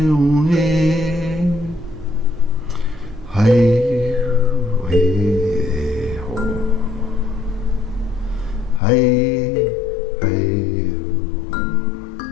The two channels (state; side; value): drops out; right; at 8.8 s